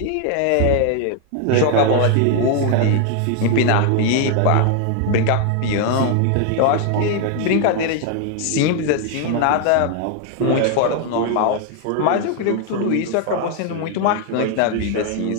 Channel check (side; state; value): both; different; correlation 0.00